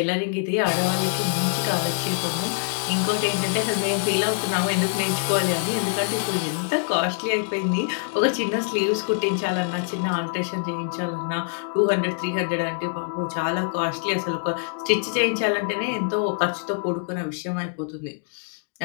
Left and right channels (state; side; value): silent; right; digital silence